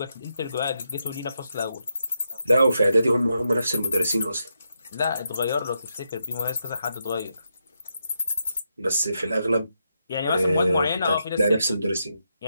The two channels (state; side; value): inverted; both; correlation -0.83